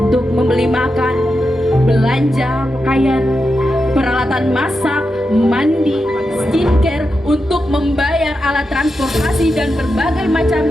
membeli makan, belanja pakaian, peralatan masak, mandi, skincare, untuk membayar alat transportasi dan berbagai macam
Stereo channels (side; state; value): both; normal; correlation 0.88